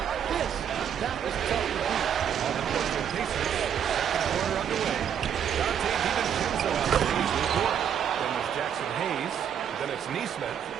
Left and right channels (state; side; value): quieter; left; 8.7 dB